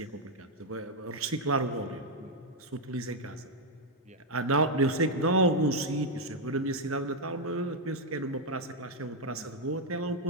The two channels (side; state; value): both; normal; correlation 0.01